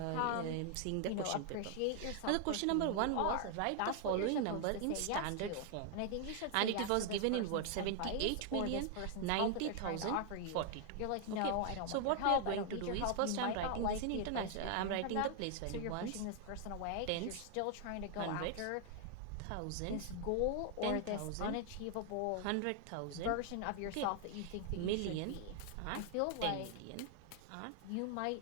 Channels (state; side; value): different; both; correlation 0.00